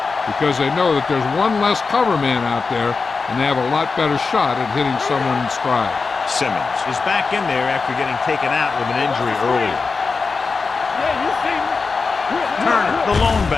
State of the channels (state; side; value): quieter; right; 4.5 dB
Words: because they know that there's one less cover man out there, and they have a lot better shot at hitting someone in stride. Simmons is back in there after getting taken out with an injury earlier. Turner, the lone